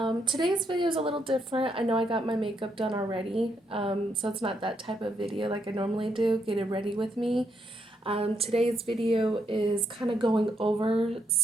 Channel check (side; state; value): both; normal; correlation 0.76